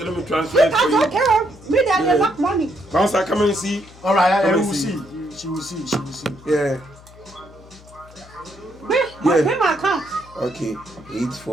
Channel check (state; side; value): noise; left; hum, 22 dB below the sound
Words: me transfer it for 2,000, you. okay. Me, they have enough money. Bouncer, come and see. All right, Come we and will see. see. She will see. She will see. Yeah. Pay my account. Okay.